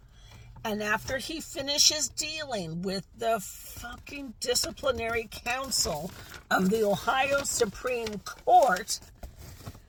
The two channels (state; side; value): identical; both; correlation 1.00